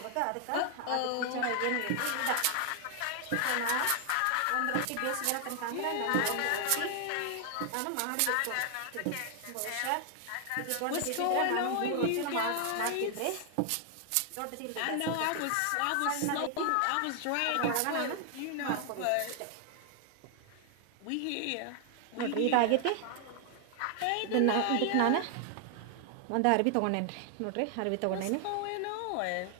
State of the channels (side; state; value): both; different; correlation 0.00